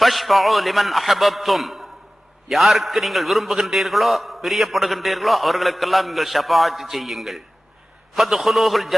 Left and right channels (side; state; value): both; normal; correlation 0.97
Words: லிமன் அஹபப்தும், யாருக்கு நீங்கள் விரும்புகின்றீர்களோ பிரியப்படுகின்றீர்களோ அவர்களுக்கெல்லாம் நீங்கள் ஷஃபாஅத் செய்யுங்கள். ஃபத்ஹுலூஹுல்